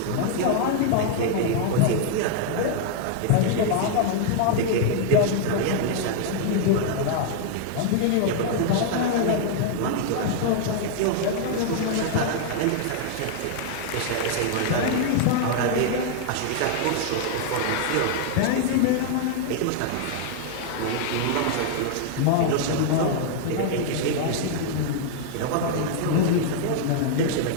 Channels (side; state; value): both; different; correlation 0.00